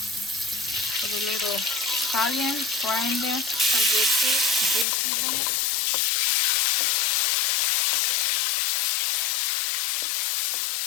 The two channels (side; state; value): right; drops out; at 4.9 s